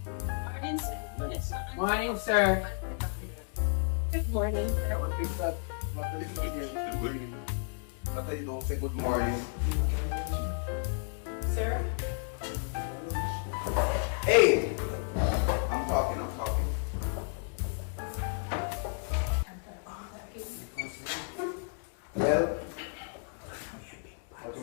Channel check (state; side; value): silent; right; 56 dB below the other